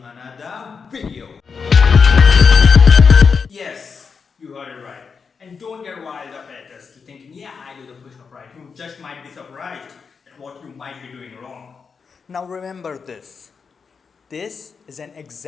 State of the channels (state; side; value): quieter; right; 5.6 dB